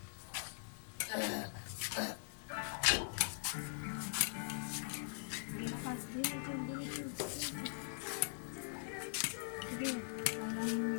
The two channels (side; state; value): right; silent; digital silence